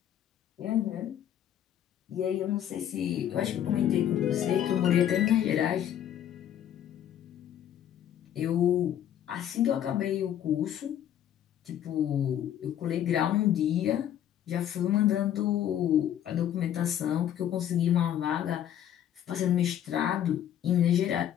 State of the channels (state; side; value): quieter; right; 10.6 dB